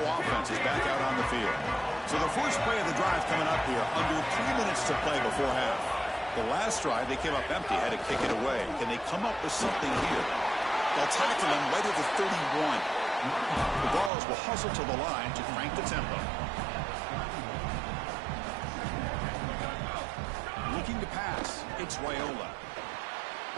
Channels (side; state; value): left; drops out; at 14.1 s